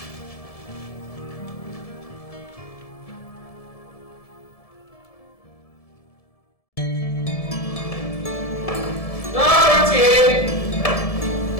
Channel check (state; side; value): late; right; 1.7 ms